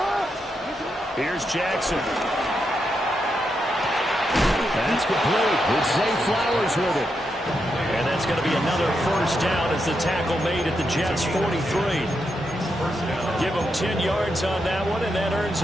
Here's Jackson. That's complete with Zay Flowers with it. And that's going to be another first down as the tackle made at the Jets' 43. Give him 10 yards on that one, and that earns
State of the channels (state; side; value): normal; both; correlation 0.83